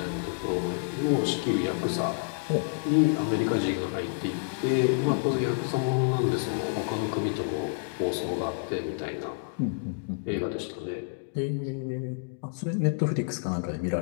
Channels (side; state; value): right; silent; digital silence